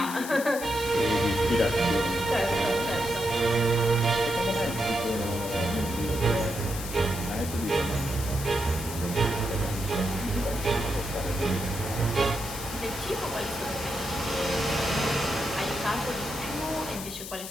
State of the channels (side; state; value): left; noise; hiss, 9 dB below the sound